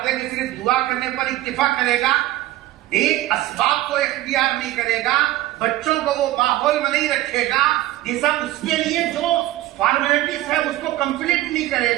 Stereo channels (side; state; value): left; quieter; 15.8 dB